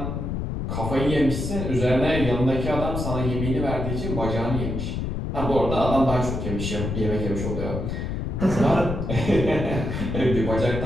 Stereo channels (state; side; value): noise; left; rumble, 3 dB below the sound